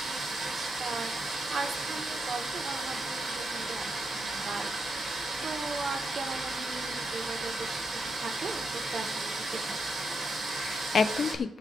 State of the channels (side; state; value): both; normal; correlation 0.81